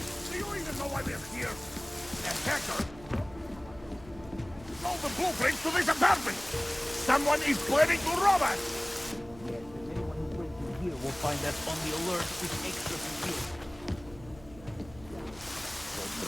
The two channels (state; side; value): noise; right; hum, 19 dB below the sound